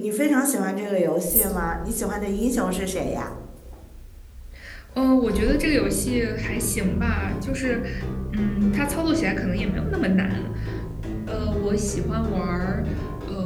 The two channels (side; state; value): both; identical; correlation 1.00